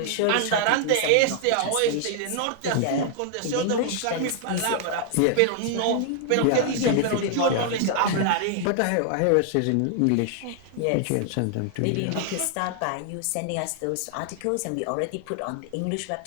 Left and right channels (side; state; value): both; different; correlation 0.00